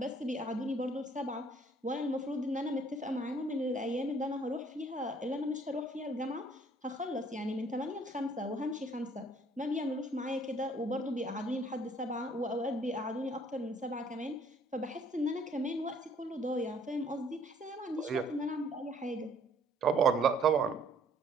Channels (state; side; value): normal; both; correlation 0.60